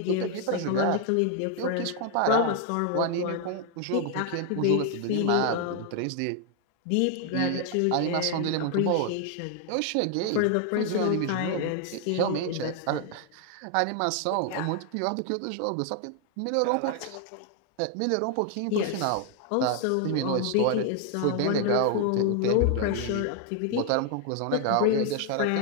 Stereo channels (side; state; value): both; different; correlation 0.00